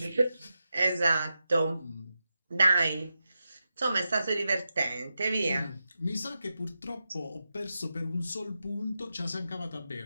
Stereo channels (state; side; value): inverted; both; correlation -0.89